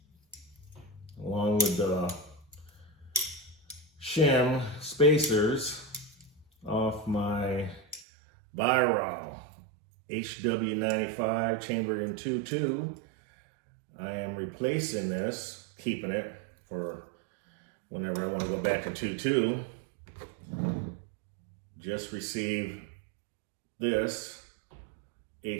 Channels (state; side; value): drops out; left; at 8.1 s